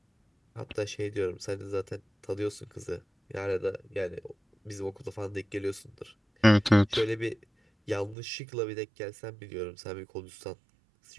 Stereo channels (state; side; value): drops out; left; at 8.2 s